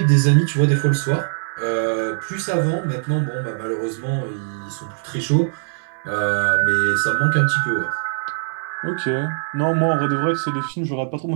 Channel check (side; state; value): left; silent; 62 dB below the other